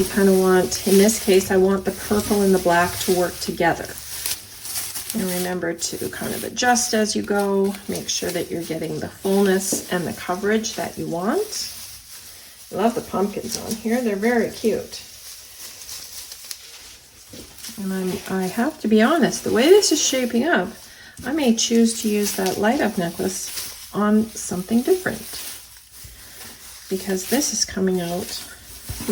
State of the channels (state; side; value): identical; both; correlation 1.00